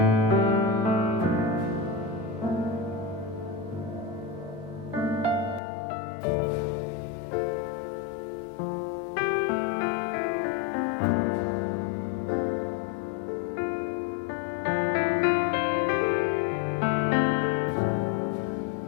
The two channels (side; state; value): right; drops out; at 5.6 s